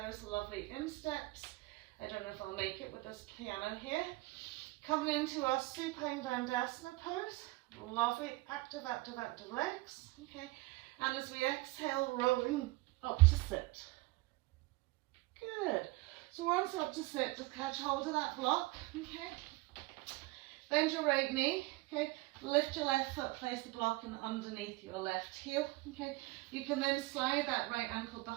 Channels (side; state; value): left; quieter; 21.6 dB